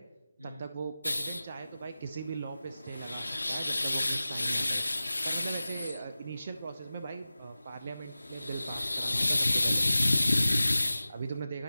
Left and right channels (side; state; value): both; inverted; correlation -0.95